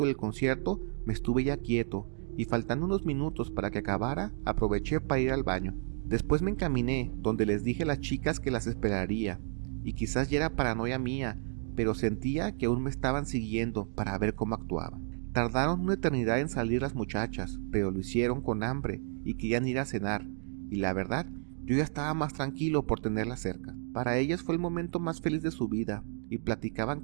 del concierto me estuve ya quieto, y faltando unos minutos para que acabara, aproveché para ir al baño. Después me encaminé donde les dije a las chicas que las esperaría, y quizás ya era paranoia mía, pero sentía que aún me estaban siguiendo para ver cómo actuaba. Tardaron una eternidad en salir las muchachas, pero lo hicieron con hambre y querían ir a cenar, y la verdad, yo ya estaba más tranquilo por tenerlas cerca. Para ellas fue el momento más feliz de su vida, y platicaban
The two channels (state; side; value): silent; left; digital silence